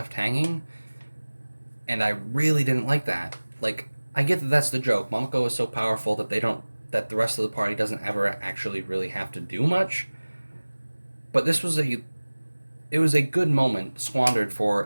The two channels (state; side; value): inverted; both; correlation -1.00